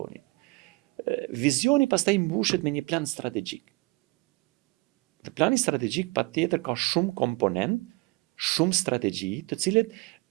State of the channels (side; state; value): left; quieter; 24.9 dB